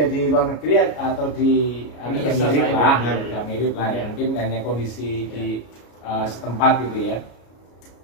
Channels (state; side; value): late; right; 33 ms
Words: di luar negeri atau di ini yang mirip lah, mirip lah ya. Mungkin hanya kondisi di setempat gitu ya.